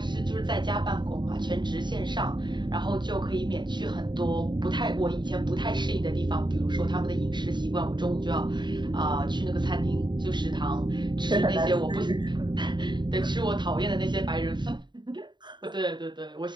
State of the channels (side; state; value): left; late; 0.22 ms